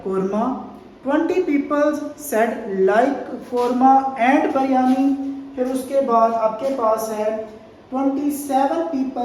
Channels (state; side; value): identical; both; correlation 1.00